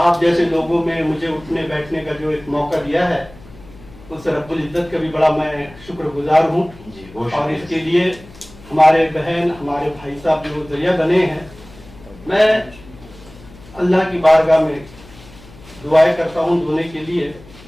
जैसे लोगों में मुझे उठने बैठने का जो एक मौका दिया है, उस रब्बुल इज्जत का भी बड़ा मैं शुक्रगुजार हूँ। और इसके लिए हमारे बहन, हमारे भाई साहब जो जरिया बने हैं, मैं अल्लाह की बारगाह में दुआएं करता हूँ दोनों के लिए।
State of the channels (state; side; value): noise; left; hum, 21 dB below the sound